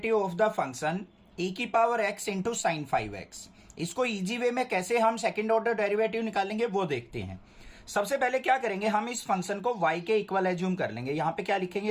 of the function e की power x into sine 5x। इसको इजी वे में कैसे हम सेकेंड ऑर्डर डेरिवेटिव निकालेंगे वो देखते हैं। सबसे पहले क्या करेंगे, हम इस फंक्शन को y के इक्वल एज्यूम कर लेंगे। यहां पे क्या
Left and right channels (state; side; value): identical; both; correlation 1.00